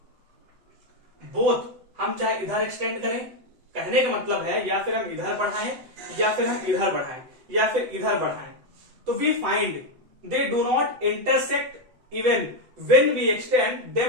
बोथ हम चाहे इधर एक्सटेंड करें, कहने का मतलब है या फिर हम इधर बढ़ाएं या फिर हम इधर बढ़ाएं या फिर इधर बढ़ाएं, तो we find they do not intersect even when we extend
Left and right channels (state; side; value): late; left; 7.8 ms